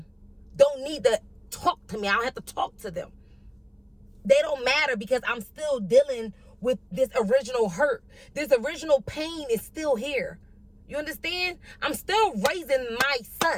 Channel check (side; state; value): both; identical; correlation 1.00